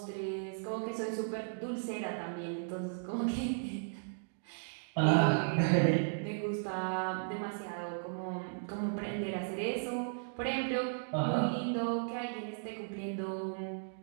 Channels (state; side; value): silent; left; digital silence